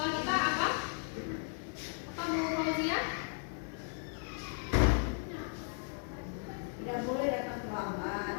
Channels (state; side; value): silent; right; 54 dB below the other